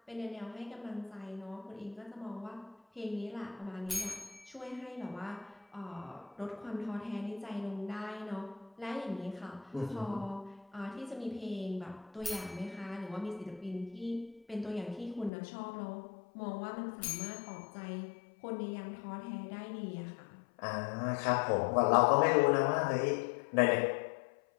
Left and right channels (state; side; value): drops out; right; at 15.3 s